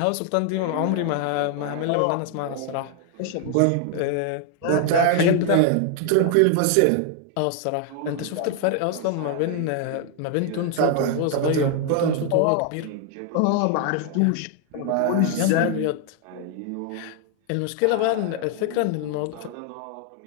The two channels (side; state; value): both; different; correlation 0.00